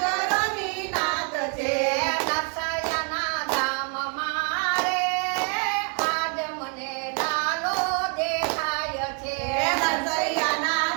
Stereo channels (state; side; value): quieter; left; 39.9 dB